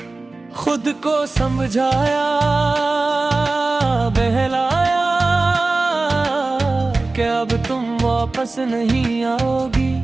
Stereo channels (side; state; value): left; quieter; 3.4 dB